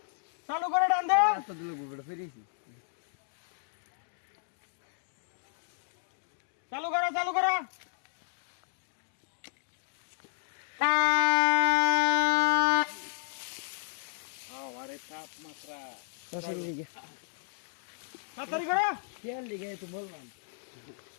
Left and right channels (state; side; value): silent; right; digital silence